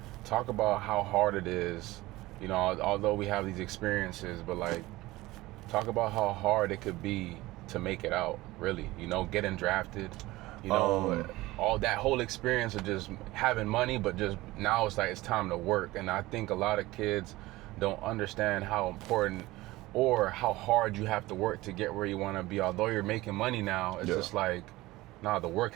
talk about how hard it is, you know, although we have these experiences, but like talk about how hard it could be to make it out, really, you know, getting drafted, you know, all that whole experience of just having money, but just now it's like it's time to work. And I think a lot of kids don't understand how important or how hard you have to work to get where you want to be. Although you're making money now, it's just like, nah, the work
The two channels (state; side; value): quieter; left; 18.9 dB